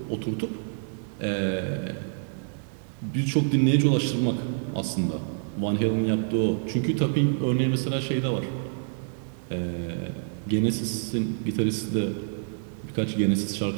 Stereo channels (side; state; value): left; silent; 55 dB below the other